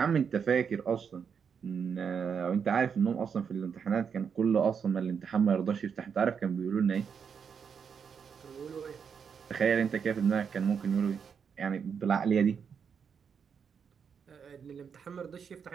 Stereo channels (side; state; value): left; quieter; 6.8 dB